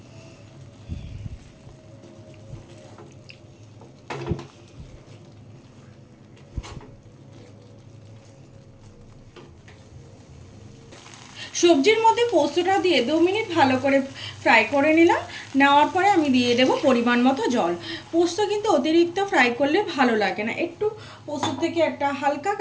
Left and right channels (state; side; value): identical; both; correlation 1.00